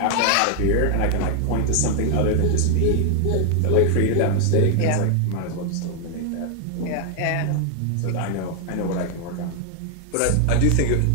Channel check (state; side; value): different; both; correlation 0.00